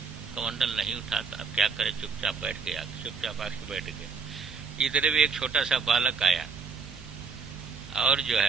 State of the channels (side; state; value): left; quieter; 5.1 dB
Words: कमंडल नहीं उठाता। अब क्या करे, चुपचाप बैठ गया, चुपचाप आके बैठ गया। इधर भी एक छोटा सा बालक आया और जो